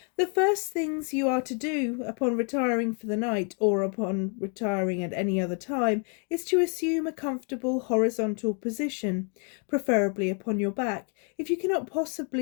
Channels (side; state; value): right; quieter; 39.5 dB